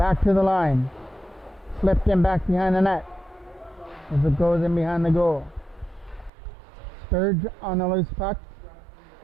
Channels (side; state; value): left; drops out; at 6.3 s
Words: to the line. Flipped in back behind the net as it goes in behind the goal. Sturge on the loose puck.